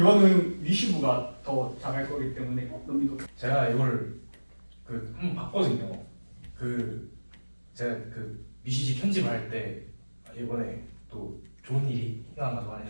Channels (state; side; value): inverted; both; correlation -1.00